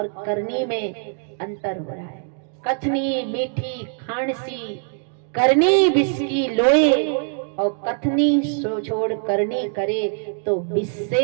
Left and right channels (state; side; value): silent; left; 55 dB below the other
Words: करनी में अंतर हो रहा है। कथनी मीठी खांडसी, करनी बिस्की लोए, और कथनी छोड़ करनी करे तो